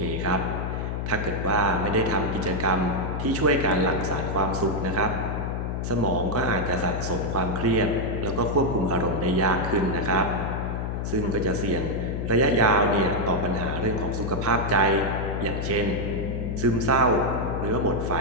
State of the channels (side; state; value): left; noise; hum, 2 dB below the sound